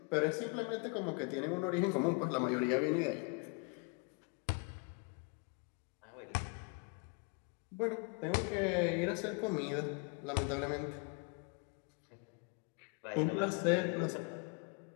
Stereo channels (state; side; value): quieter; right; 30.2 dB